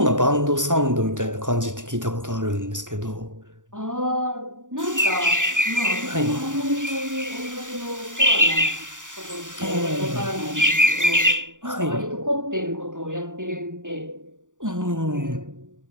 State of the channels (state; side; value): late; left; 0.87 ms